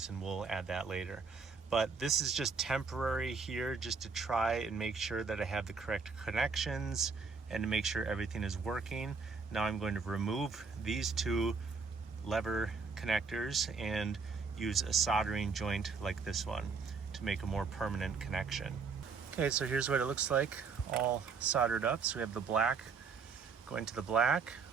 and we'll add that later. But this is just temporary here, just to try and make sure that I have the correct connections and to make sure everything is working. Now I'm going to remove these two lever connectors and use a soldering joint like this one to make a more permanent connection. Okay, so here's what it looks like all soldered up. So we have the black going to the black,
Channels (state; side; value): quieter; left; 5.0 dB